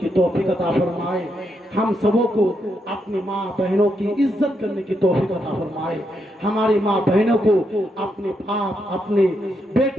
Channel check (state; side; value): normal; both; correlation 0.80